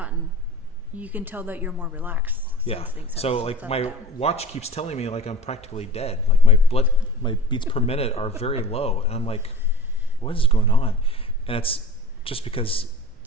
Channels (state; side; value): normal; both; correlation 0.39